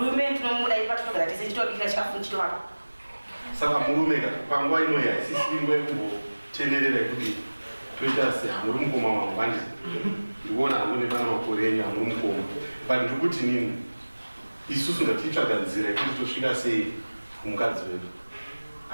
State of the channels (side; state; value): both; inverted; correlation -1.00